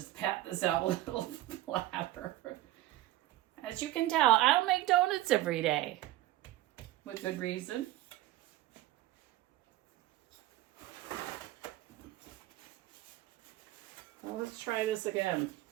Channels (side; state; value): left; quieter; 15.9 dB